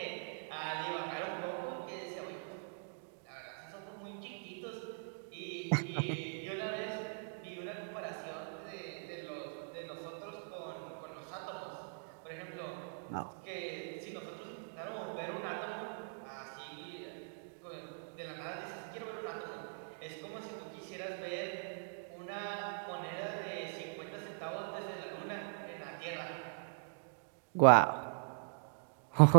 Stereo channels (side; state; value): left; silent; digital silence